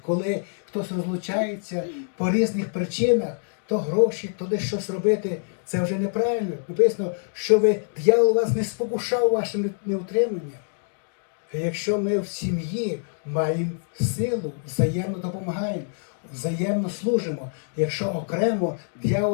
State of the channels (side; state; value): right; silent; digital silence